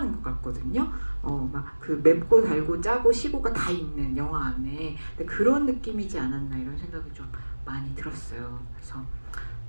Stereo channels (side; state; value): both; inverted; correlation -1.00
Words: 것 같거든요. 막 그 맵고 달고 짜고 시고가 다 있는 영화 안에 근데 그런 느낌이지 않았나 이런 생각이 좀 많이 들었어요. 그래서